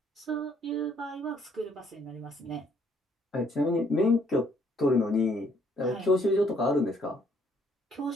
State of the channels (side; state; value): both; normal; correlation 0.66